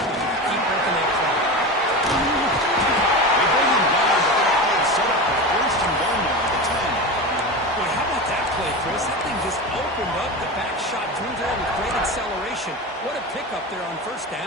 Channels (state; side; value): normal; both; correlation 0.25